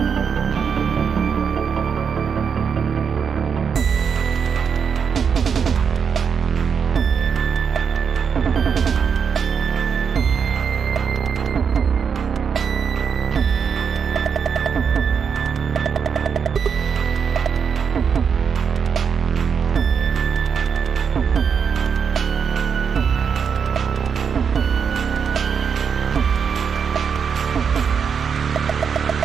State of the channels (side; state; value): left; quieter; 6.7 dB